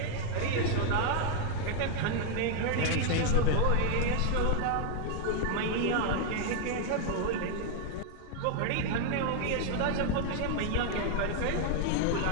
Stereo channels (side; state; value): both; different; correlation 0.00